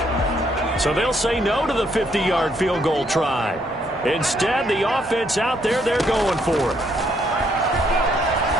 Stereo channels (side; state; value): both; normal; correlation 0.71